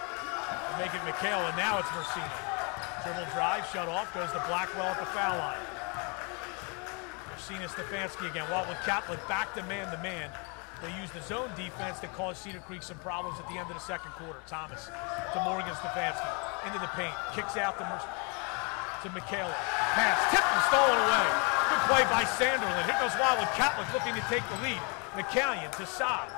Make it Michaela, and now it's Marcina. Dribble drive, shut off, goes to Blackwell at the foul line. Marcina Stefanski again. Wildwood Catholic back to man-to-man. They used the zone defense that caused Cedar Creek some problems at the end of the second quarter. Thomas to Morgan Stefanski, into the paint, kicks out to Michaela. Pass, tipped and stolen away. Good play by Sanderlin. Here goes Wildwood Catholic looking to take the lead. McCallion to Saab.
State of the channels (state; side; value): quieter; right; 33.8 dB